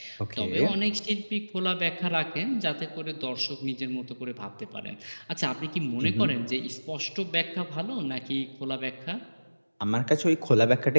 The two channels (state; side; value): inverted; both; correlation -1.00